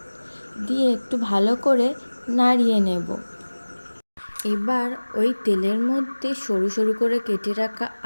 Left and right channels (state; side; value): inverted; both; correlation -1.00